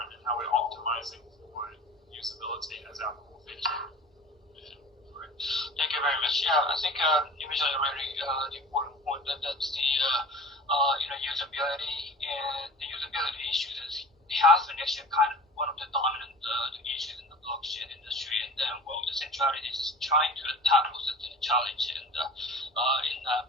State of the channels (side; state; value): both; normal; correlation 0.38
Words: and how we're optimizing for usability as our core feature. Thank you very much. Yeah, I think you mentioned a really important point that's the usability, and the usability issues has been actually kind of one of the dominant issues in the blockchain industry, and then the centrality is trying to tackle such a challenge and